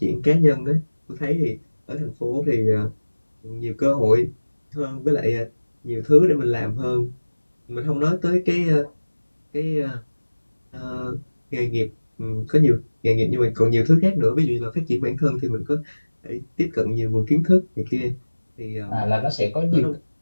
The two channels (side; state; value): both; inverted; correlation -1.00